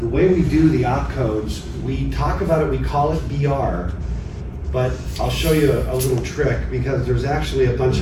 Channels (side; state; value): both; identical; correlation 1.00